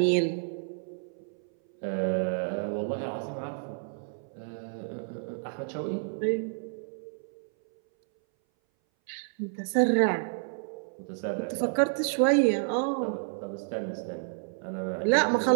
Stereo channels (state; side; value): silent; left; 58 dB below the other